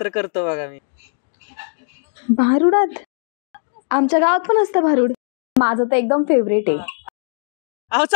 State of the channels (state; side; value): silent; right; digital silence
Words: करतो बघा मी. भारुडात? आमच्या गावात पण असतं भारुड. माझं तर एकदम फेवरेट आहे. अहो